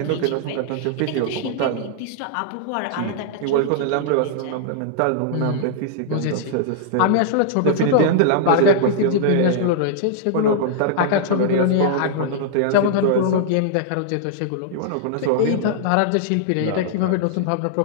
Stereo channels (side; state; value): both; different; correlation -0.01